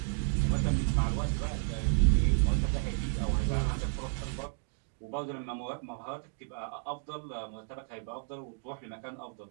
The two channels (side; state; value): left; silent; 56 dB below the other